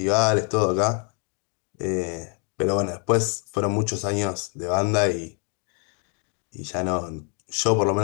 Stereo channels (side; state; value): right; quieter; 38.2 dB